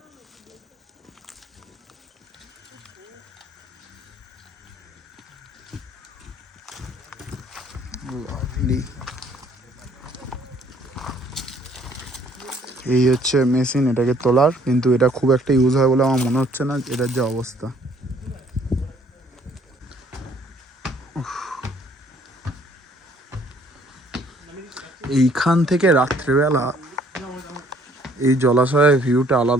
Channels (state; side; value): normal; both; correlation 0.61